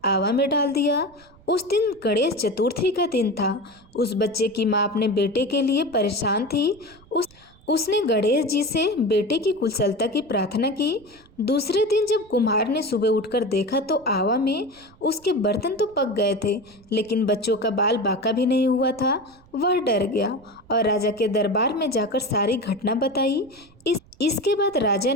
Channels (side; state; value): right; noise; rumble, 27 dB below the sound